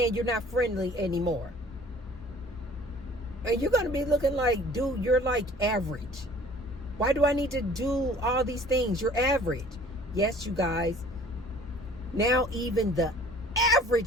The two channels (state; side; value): normal; both; correlation 0.51